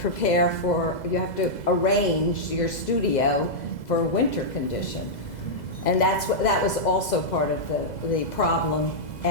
have to arrange your studio for winter condition. And that was also part of the problem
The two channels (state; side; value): late; right; 2.0 ms